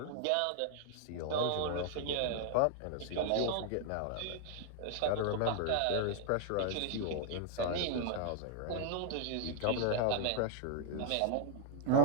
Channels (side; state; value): both; different; correlation 0.00